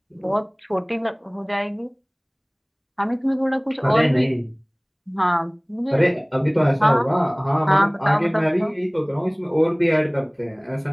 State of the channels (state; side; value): identical; both; correlation 1.00